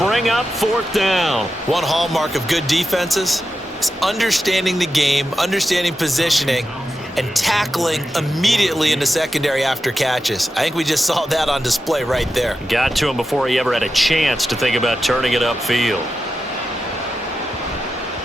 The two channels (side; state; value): both; normal; correlation 0.90